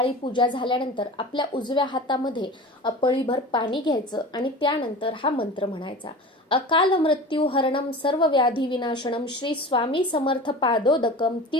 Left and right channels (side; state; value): both; normal; correlation 0.35